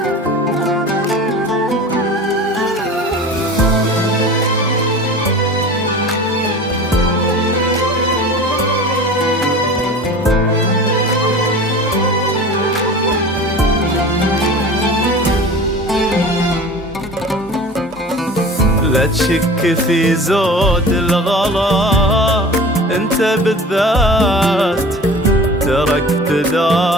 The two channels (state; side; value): normal; both; correlation 0.38